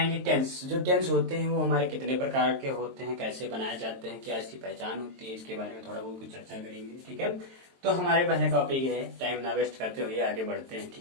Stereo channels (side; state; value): left; late; 22 ms